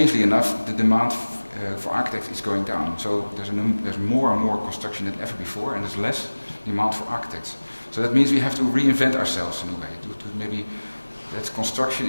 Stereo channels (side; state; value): both; inverted; correlation -1.00